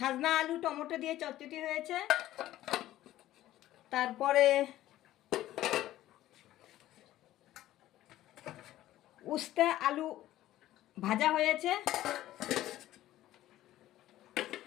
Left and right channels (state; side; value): quieter; right; 14.3 dB